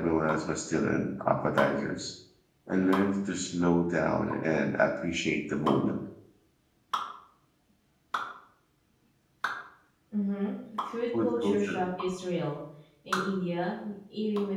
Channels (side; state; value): both; identical; correlation 1.00